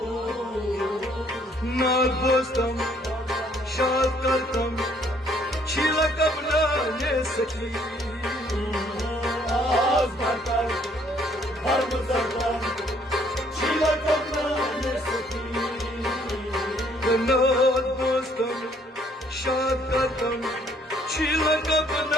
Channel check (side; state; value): both; normal; correlation 0.64